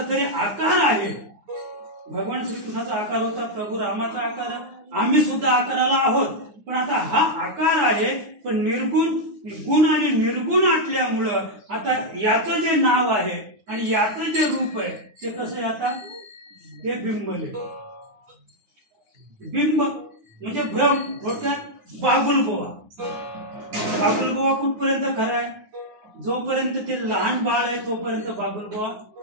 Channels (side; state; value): left; late; 9.7 ms